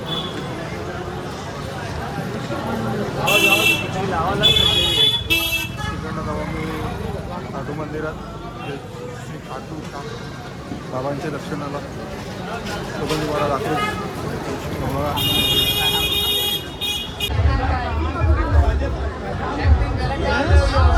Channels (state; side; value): identical; both; correlation 1.00